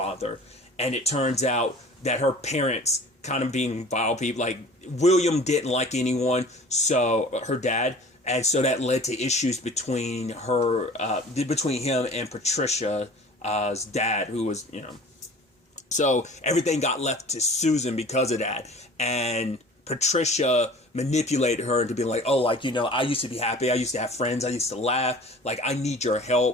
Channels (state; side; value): normal; both; correlation 0.44